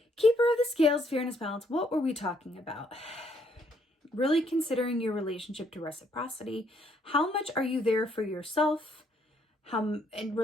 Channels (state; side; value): normal; both; correlation 0.70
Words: Keeper of the scales, fairness, balance. What were we talking about? Really considering your relationship to reciprocity. How much are you there for yourself? How in